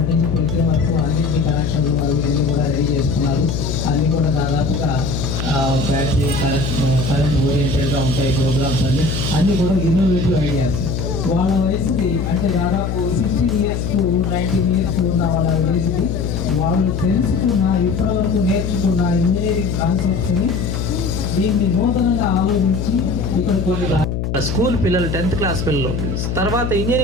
నుంచి పులితే వరకు అన్నింటి కనెక్షన్లు అవి అన్నీ కూడా రెడీ చేసుకున్నారు. అన్నీ కూడా దాదాపుగా బ్యాటరీ కరెంట్ ఓరియంటెడ్గా ఉంటాయి ప్రోగ్రామ్స్ అన్నీ కూడా ఇన్నోవేటివ్ ఐడియాస్. వాళ్ళ వయసుకి అంటే దాదాపు 16 years to 19 years ఉన్న వాళ్ళ వయసుకి వాళ్ళు తెలుసుకున్న ఇప్పటివరకు నేర్చుకున్న ఇంజనీరింగ్ కాన్సెప్ట్స్ని దీన్ని నూతనంగా ఆలోచించి ఇక్కడ కొన్ని స్కూల్ పిల్లలు 10th క్లాస్ పిల్లలు తర్వాత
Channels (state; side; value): noise; left; hum, 2 dB below the sound